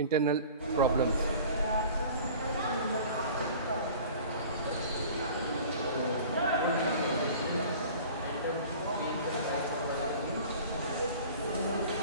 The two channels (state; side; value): inverted; both; correlation -0.44